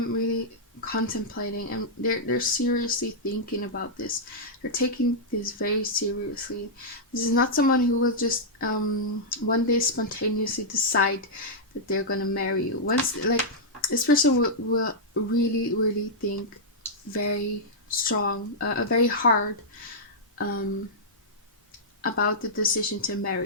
really contemplating, and they're seriously thinking about this. They're taking this very seriously. This is not someone who will just one day spontaneously decide that they're gonna marry you. Once, like, this person will really, really think very strong, very hard about the decision to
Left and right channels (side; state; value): both; normal; correlation -0.09